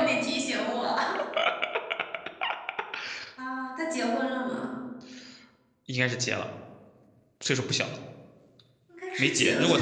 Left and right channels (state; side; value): identical; both; correlation 1.00